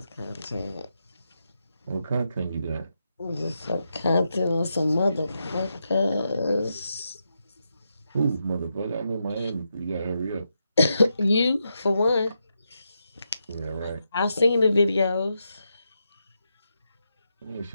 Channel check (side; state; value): both; inverted; correlation -0.84